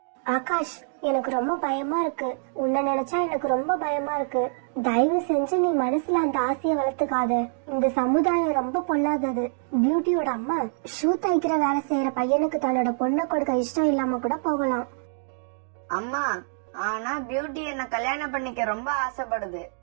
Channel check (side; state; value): left; silent; digital silence